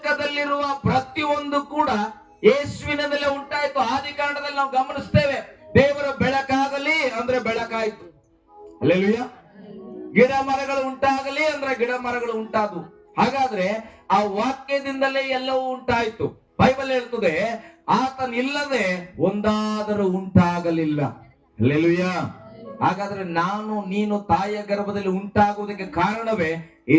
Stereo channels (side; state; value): both; identical; correlation 1.00